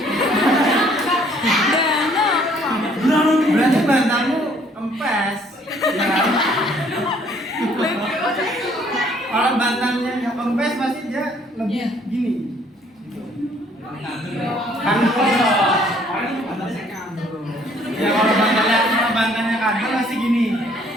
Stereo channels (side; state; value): both; normal; correlation 0.61